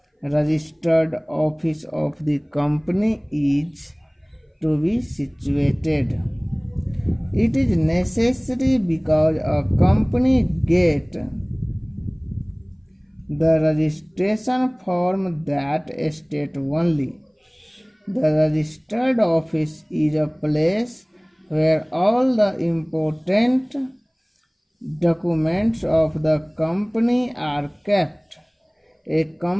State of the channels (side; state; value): both; identical; correlation 1.00